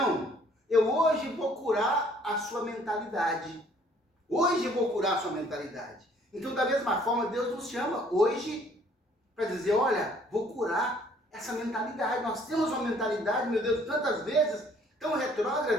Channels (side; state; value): both; normal; correlation 0.59